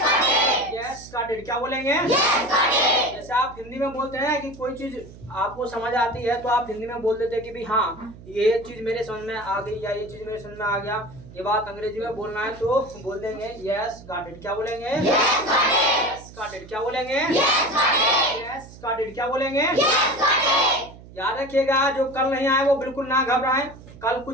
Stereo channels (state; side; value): noise; right; hum, 19 dB below the sound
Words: Yes got it. क्या बोलेंगे? जैसे आप हिंदी में बोलते हैं कि कोई चीज आपको समझ आती है तो आप हिंदी में बोल देते हैं कि भाई हाँ, ये चीज मेरे समझ में आ गई या ये चीज मेरे समझ में आ गया। ये बात अंग्रेजी में बोलना है तो बोल देंगे यस गॉट इट। क्या बोलेंगे? Yes got it. क्या बोलेंगे? Yes got it. क्या बोलेंगे? याद रखिएगा, जो कल नहीं आए वो बिल्कुल ना घबराएं। कल